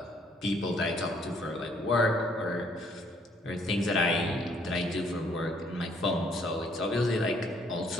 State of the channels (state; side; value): normal; both; correlation 0.65